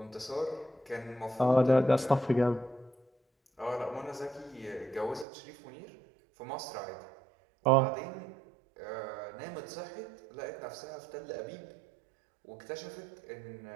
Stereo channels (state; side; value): drops out; left; at 5.2 s